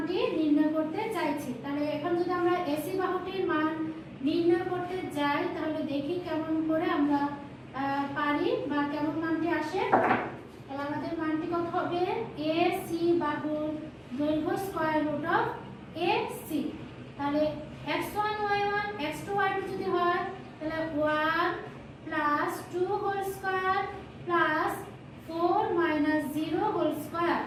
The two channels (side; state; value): both; identical; correlation 1.00